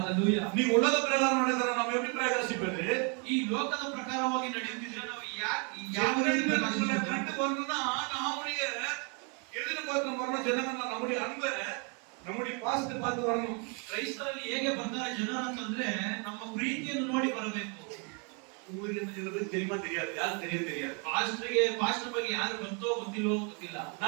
நீ உலக பிரகாரம் நடக்கிற நம்ம எப்படி பிரகாசிப்பது? ಈ ಲೋಕದ ಪ್ರಕಾರವಾಗಿ ನಡೆಯುತ್ತಿದ್ರೆ ನಾವು ಯಾವ நம்மளை ರೀತಿ கண்டு ಪ್ರಕಾಶಿಸಬೇಕು? வரணும்னா நம்முடைய எதிர்பார்க்க வரணும். ஜனங்கள் நம்முடைய அன்பை, நம்முடைய பாசத்தை பார்த்து வரணும். ಕ್ರೈಸ್ತರಲ್ಲಿ ಹೇಗೆ ಬರ್ತಾರೆ ಜನರು ಅಂತಂದ್ರೆ ನಮ್ಮ ಪ್ರೀತಿಯನ್ನು ನೋಡಿ ಬರಬೇಕು. உங்களுக்கு என்ன சில பேருக்கு தெரியுமா தெரியாது, யாருக்கு தெரியாது. ಪಾಸ್ಟರ್ ಬಗ್ಗೆ ಯಾರು ಗೊತ್ತೋ ಗೊತ್ತಿಲ್ವೋ ಗೊತ್ತಿಲ್ಲ.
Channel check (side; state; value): left; quieter; 35.4 dB